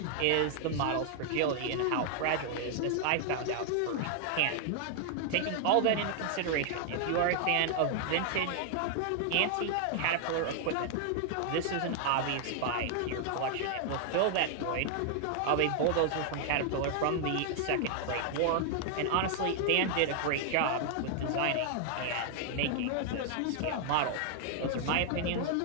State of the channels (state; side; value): different; both; correlation 0.00